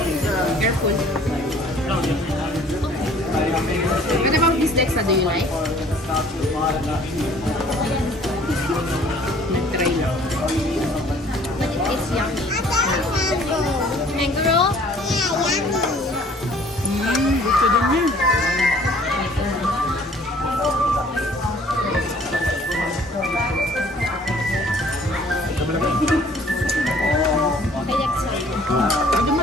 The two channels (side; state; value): both; normal; correlation 0.55